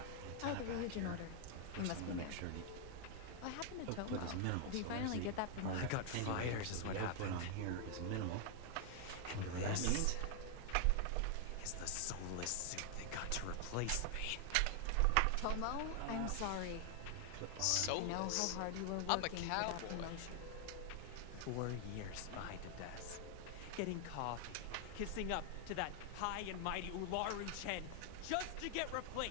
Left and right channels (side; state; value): both; different; correlation 0.00